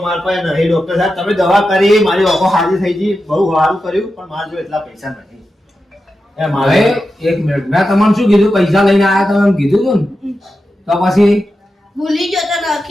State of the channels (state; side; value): normal; both; correlation 0.90